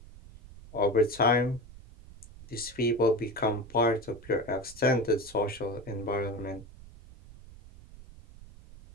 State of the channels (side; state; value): right; noise; rumble, 19 dB below the sound